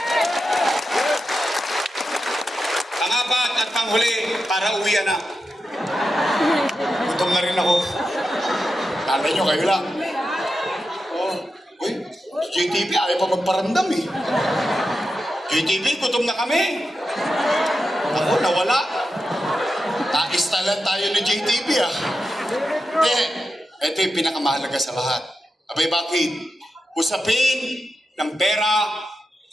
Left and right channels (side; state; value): both; normal; correlation 0.89